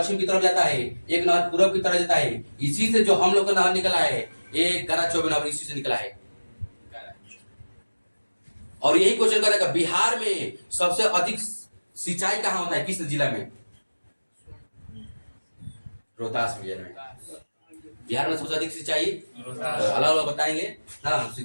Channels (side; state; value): both; inverted; correlation -1.00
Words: की तरफ जाता है, एक नहर पूर्व की तरफ जाता है। इसी से जो हम लोग का नहर निकला है, एक गरा चौबे नहर इसी से निकला है। और यही क्वेश्चन करेगा बिहार में सबसे अधिक सिंचाई कहाँ होता है? किस जिला में? रोहतास जिले में। बिहार में सबसे अधिक सिंचाई अलग अलग बताएंगे ना।